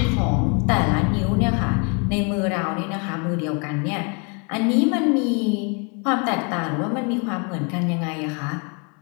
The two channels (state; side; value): quieter; right; 35.0 dB